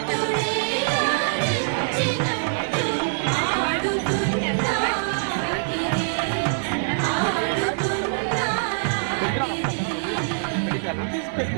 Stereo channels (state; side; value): silent; left; digital silence